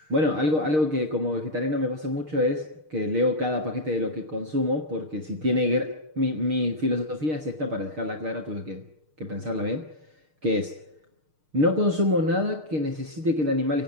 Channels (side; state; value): left; late; 6.5 ms